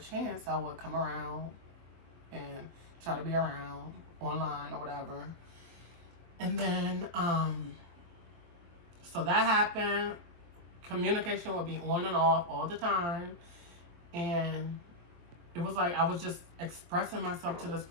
I would come around and try to be around online or whatever. And then, so that happened. Communication would be on and off all the time. And it was like I was just expressing myself to this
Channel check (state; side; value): late; left; 23 ms